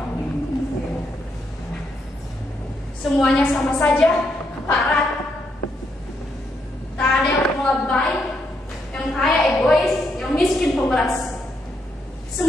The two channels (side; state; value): both; normal; correlation 0.78